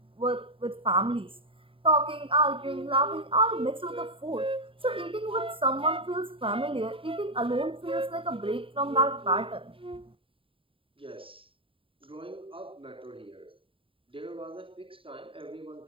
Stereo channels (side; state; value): left; late; 0.26 ms